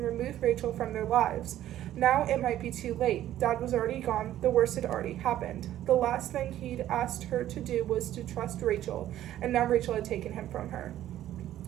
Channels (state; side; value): quieter; left; 12.7 dB